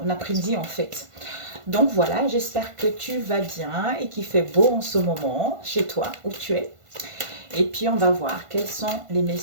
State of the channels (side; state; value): left; late; 1.5 ms